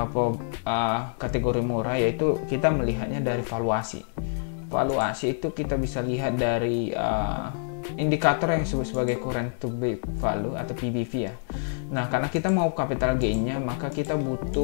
kategori murah, yaitu kita melihatnya dari valuasi. Valuasi itu kita bisa lihat dari indikator yang disebut sebagai current to book value atau PBV ya. Nah, karena kita mau capital gain-nya, maka kita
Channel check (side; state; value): right; silent; digital silence